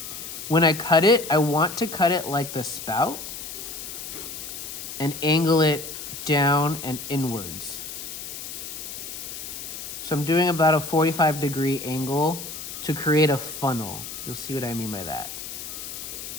When I cut it, I want to cut it like the spout and angle it down and inwards. So I'm doing about a 45-degree angle to create a funnel. You'll see what I mean by that.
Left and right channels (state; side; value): noise; left; hiss, 9 dB below the sound